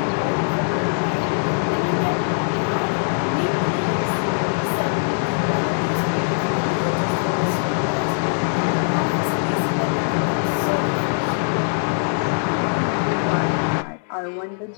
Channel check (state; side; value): silent; right; digital silence